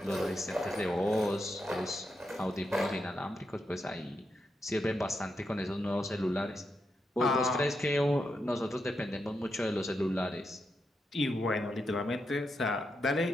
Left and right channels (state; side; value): normal; both; correlation 0.84